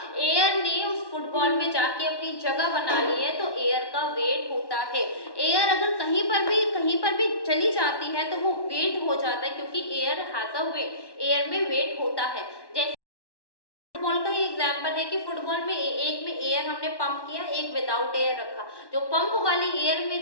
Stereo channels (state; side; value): late; right; 1.1 ms